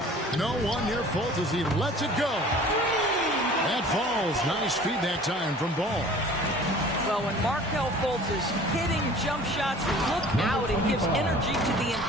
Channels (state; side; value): normal; both; correlation 0.47